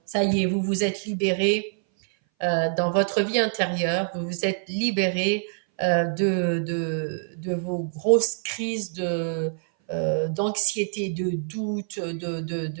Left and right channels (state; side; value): silent; left; 59 dB below the other